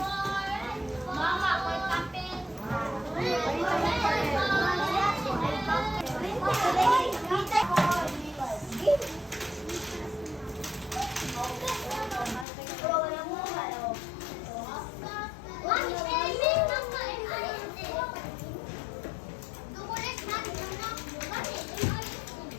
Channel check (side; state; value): right; drops out; at 12.5 s